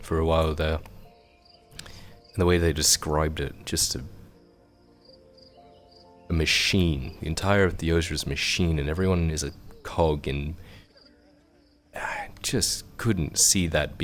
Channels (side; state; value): both; identical; correlation 1.00